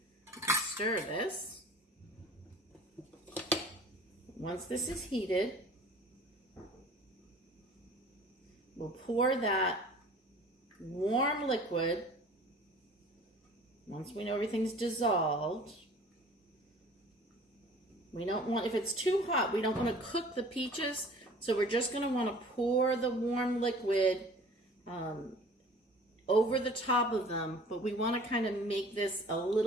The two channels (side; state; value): both; normal; correlation 0.47